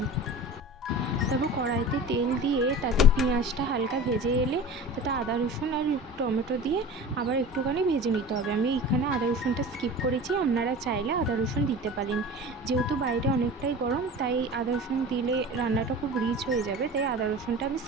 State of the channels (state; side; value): normal; both; correlation 0.36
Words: তারপর কড়াইতে তেল দিয়ে তাতে পেঁয়াজটা হালকা ভেজে এলে তাতে আদা রসুন আর টমেটো দিয়ে আবার একটুখানি ভেজে নিতে হবে। আমি এখানে আদা রসুনটা স্কিপ করেছি, আপনারা চাইলে আদা রসুন দিতে পারেন। যেহেতু বাইরে অনেকটাই গরম, তাই আদা রসুন দিলে রান্নাটা খুব রিচ হয়ে যাবে, তাই আদা রসুনটা আমি